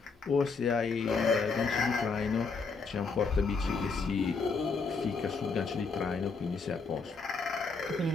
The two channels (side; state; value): right; quieter; 4.6 dB